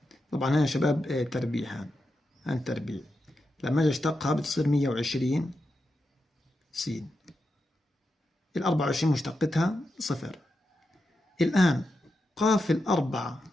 طبعا هنا يا شباب تربيع، هان تربيع، لما أجي أشتقها بتصير 120 س، ال 24 مشتقتها صفر. الآن قاف الأربعة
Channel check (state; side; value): normal; both; correlation 0.88